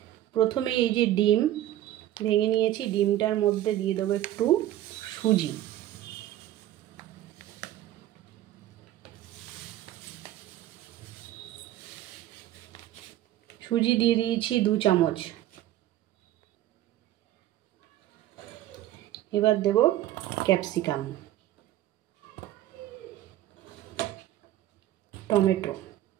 প্রথমে এই যে ডিম ভেঙে নিয়েছি, ডিমটার মধ্যে দিয়ে দেবো একটু সুজি, সুজি দিয়ে দিয়েছি 2 চামচ। এবার দেব ক্যাপসিকাম, টমেটো,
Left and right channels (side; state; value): left; quieter; 13.5 dB